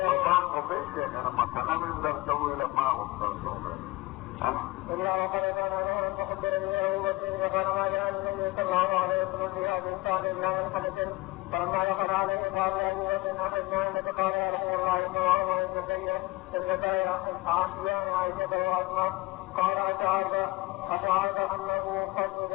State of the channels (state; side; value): quieter; right; 21.0 dB